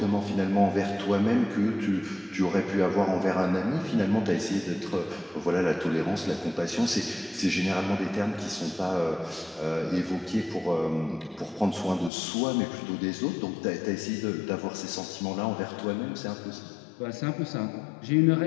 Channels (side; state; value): right; drops out; at 12.1 s